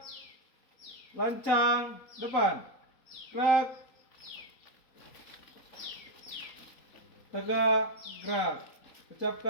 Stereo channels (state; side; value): late; right; 3.9 ms